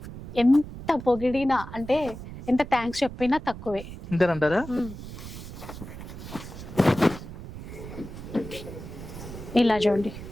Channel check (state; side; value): noise; right; rumble, 12 dB below the sound